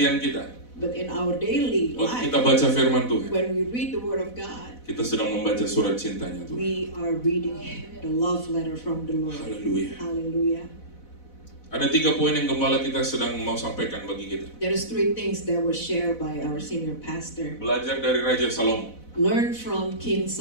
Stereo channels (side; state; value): right; late; 4.0 ms